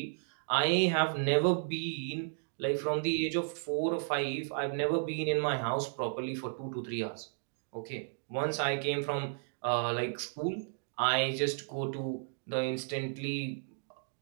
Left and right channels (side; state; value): left; silent; digital silence